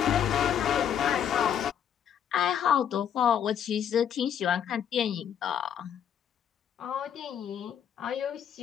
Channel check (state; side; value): quieter; right; 8.9 dB